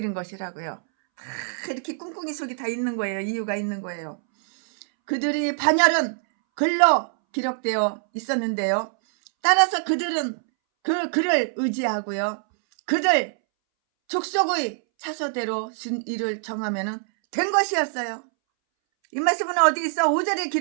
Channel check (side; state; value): left; silent; 62 dB below the other